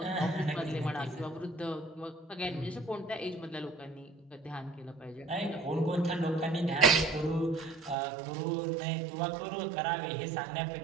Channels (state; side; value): drops out; left; at 8.0 s